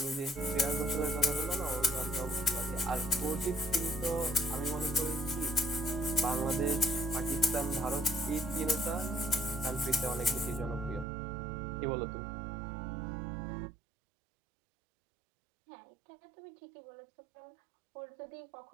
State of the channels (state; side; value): drops out; left; at 11.1 s